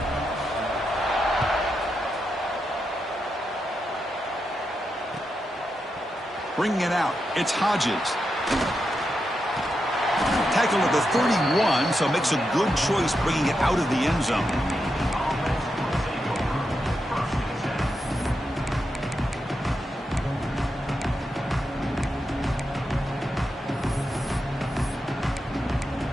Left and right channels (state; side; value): normal; both; correlation 0.86